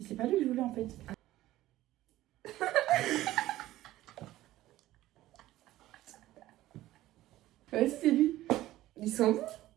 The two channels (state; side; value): quieter; left; 15.5 dB